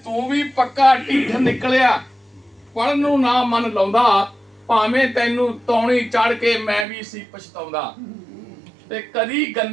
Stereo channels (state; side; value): drops out; left; at 6.9 s